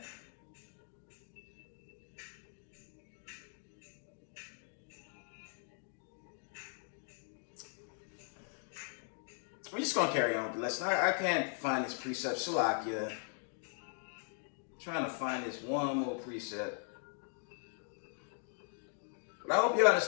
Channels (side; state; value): right; silent; 52 dB below the other